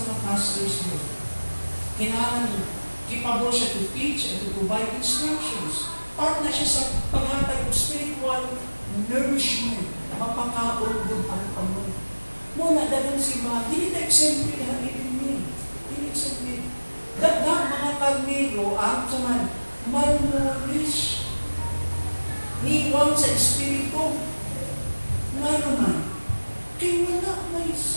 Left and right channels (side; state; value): both; inverted; correlation -1.00